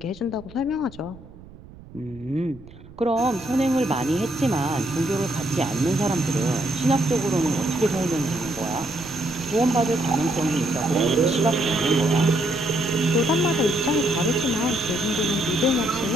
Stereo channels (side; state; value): right; noise; rumble, 19 dB below the sound